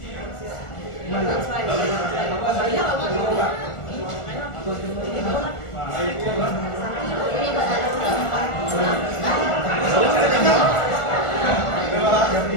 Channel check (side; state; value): right; late; 1.4 ms